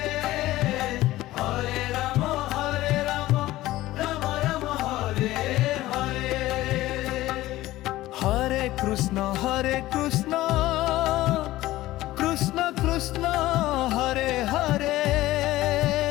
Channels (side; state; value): right; quieter; 16.4 dB